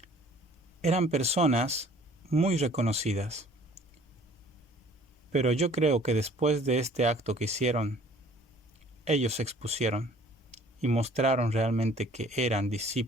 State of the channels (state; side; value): normal; both; correlation 0.53